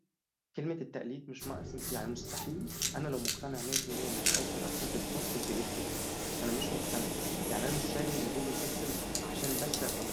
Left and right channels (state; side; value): identical; both; correlation 1.00